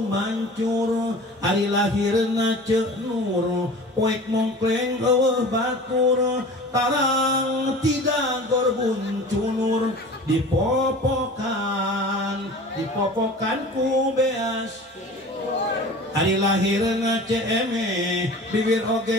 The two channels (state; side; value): normal; both; correlation 0.40